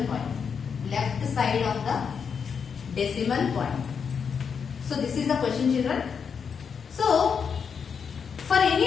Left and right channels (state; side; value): quieter; right; 6.5 dB